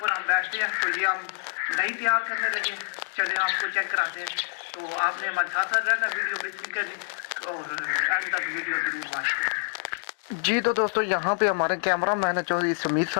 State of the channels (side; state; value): right; silent; digital silence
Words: हम बैठते हैं। तो ये हम दही तैयार करने लगे, चले आपको चेक कराते हैं। तो आपने हमारे साथ साथ रहना, वीडियो मिस नहीं करनी और एंड तक वीडियो जरूर वॉच करें। जी तो दोस्तों यहाँ पे हमारे कैमरा मैन है चौधरी समीर